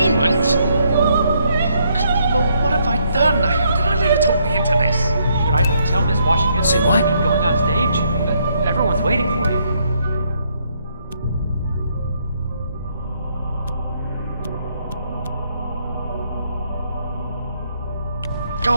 Lord, what have I done? How did I let her talk me into this? Should I tell Miss Washington Say that what? you're going on stage? Everyone's waiting for you.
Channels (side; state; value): both; inverted; correlation -0.73